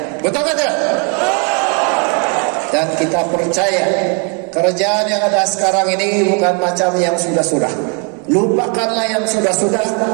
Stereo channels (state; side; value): quieter; left; 36.9 dB